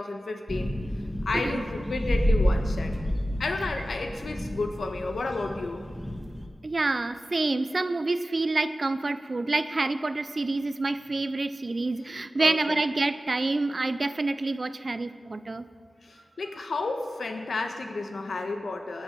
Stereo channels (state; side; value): normal; both; correlation 0.95